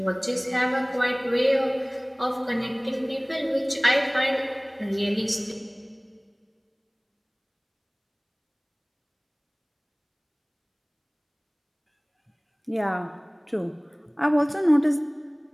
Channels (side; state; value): both; identical; correlation 1.00